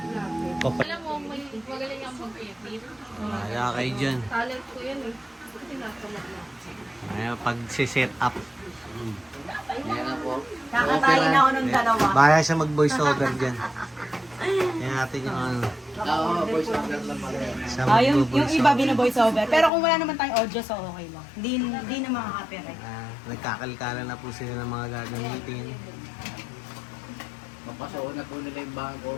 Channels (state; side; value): drops out; right; at 19.7 s